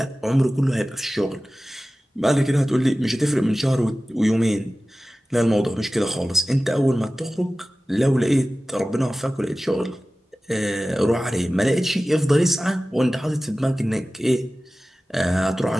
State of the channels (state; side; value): normal; both; correlation 0.96